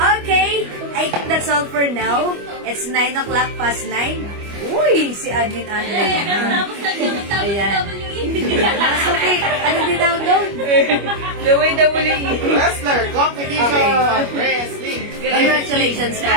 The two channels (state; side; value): late; left; 25 ms